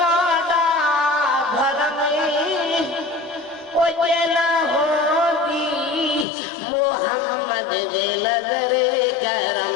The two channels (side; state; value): right; drops out; at 6.2 s